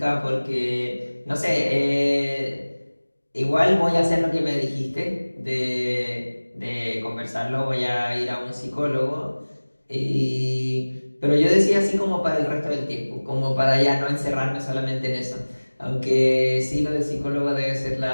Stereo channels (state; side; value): inverted; both; correlation -1.00